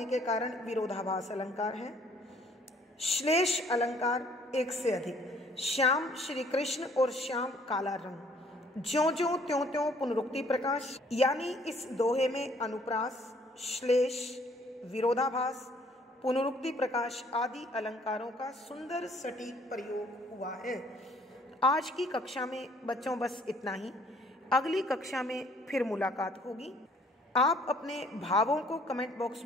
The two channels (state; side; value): normal; both; correlation 0.60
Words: के कारण विरोधाभास अलंकार है। श्लेष अलंकार एक से अधिक, श्याम श्री कृष्ण और श्याम काला रंग, ज्यों ज्यों त्यों त्यों पुनरुक्ति प्रकाश, यानी इस दोहे में अनुप्रास, श्लेष, विरोधाभास, पुनरुक्ति प्रकाश आदि अलंकारों का सुंदर सटीक प्रयोग हुआ है। आज की कक्षा में बच्चों बस इतना ही। अगली कक्षा में फिर मुलाकात होगी। आप अपने भावों को कमेंट बॉक्स